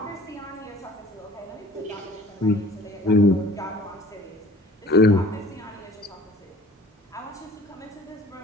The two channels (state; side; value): normal; both; correlation 0.49